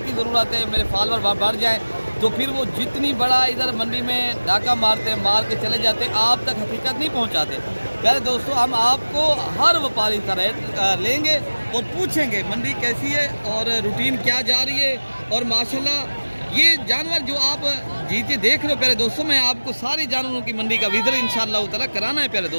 ज़रूरत है, मेरे फॉलोअर बढ़ जाए तो फिर वो जितनी बड़ा इधर मंडी में डाका मारते हैं, मार के चले जाते हैं, आप तक हकीकत नहीं पहुंचाते। प्यारे दोस्तों, हम आपको हर व्यापारी का रेट लेंगे और पूछेंगे मंडी कैसी है और रूटीन क्या जा रही है। और माशाल्लाह ये जानवर जो आप जीते देख रहे हो प्यारे दोस्तों, मैं आपको सारे जानवरों की मंडी का विज़िट इंशाअल्लाह ताला कराना है प्यारे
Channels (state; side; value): inverted; both; correlation -1.00